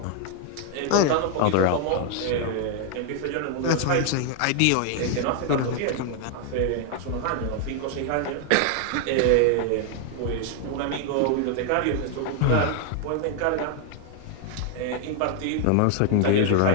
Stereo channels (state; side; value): different; both; correlation 0.00